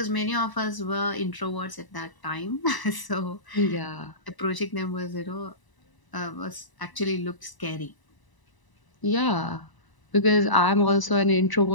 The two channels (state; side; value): late; right; 1.0 ms